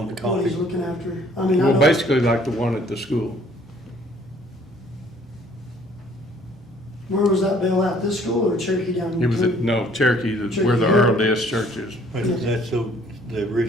to what he's copy. looking after. I mean, I Well, don't, basically like the one at the school. where was that bill at, this school or Cherokee down? It was at, between? no, Cherokee, where the Earl Des Church is. That's the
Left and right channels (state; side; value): normal; both; correlation 0.59